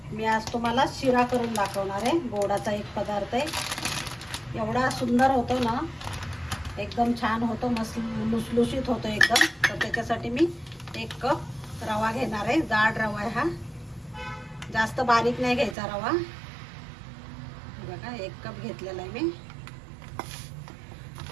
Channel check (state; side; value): drops out; left; at 15.8 s